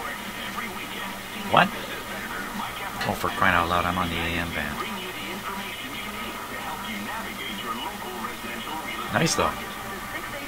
Every weekend. What? Oh, for crying out loud, I'm on the AM band. Bring you the information you need to help you navigate your local residential real estate. Nice though. The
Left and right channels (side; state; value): both; identical; correlation 1.00